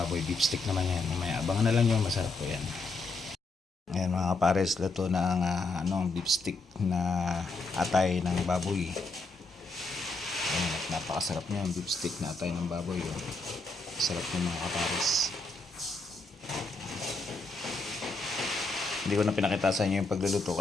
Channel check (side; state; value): right; quieter; 3.3 dB